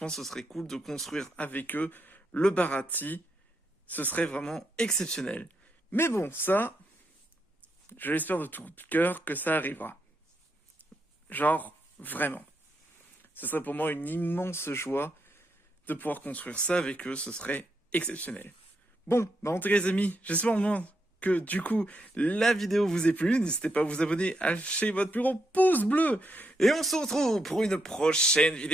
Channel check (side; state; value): both; normal; correlation 0.81